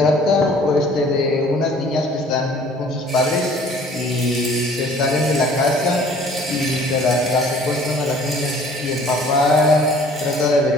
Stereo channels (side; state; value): both; normal; correlation 0.53